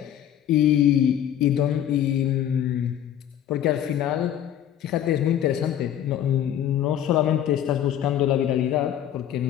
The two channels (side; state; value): right; quieter; 10.6 dB